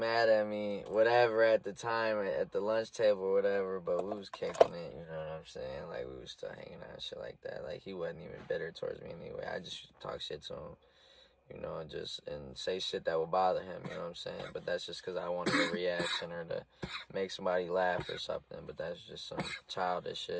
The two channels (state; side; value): identical; both; correlation 1.00